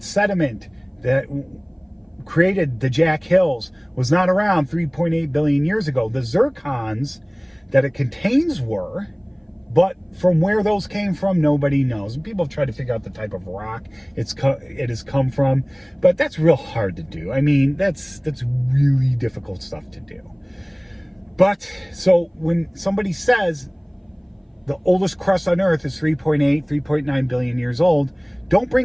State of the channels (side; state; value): both; identical; correlation 1.00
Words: sediment that created the Jack Hills was not around 3.8 billion years ago. The zircons that it contains were, but from where those came from, nobody knows. And people have tried to figure out the type of rock it has come from, but that's real hard to do. I mean, that's really difficult stuff to do. But so when somebody says the oldest crust on Earth is 3.9 billion years old, don't